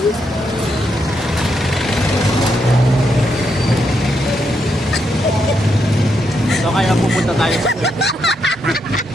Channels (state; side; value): normal; both; correlation 0.80